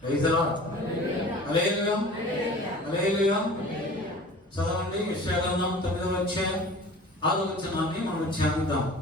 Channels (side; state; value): both; normal; correlation 0.42